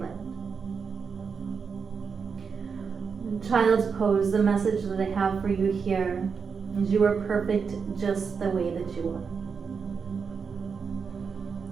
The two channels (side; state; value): left; quieter; 5.8 dB